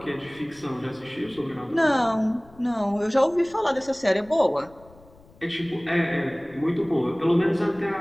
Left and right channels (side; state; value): left; noise; rumble, 25 dB below the sound